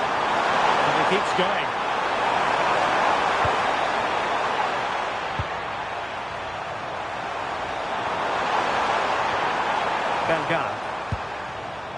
Keeps going. Bellegarde.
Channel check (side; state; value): right; noise; hum, 24 dB below the sound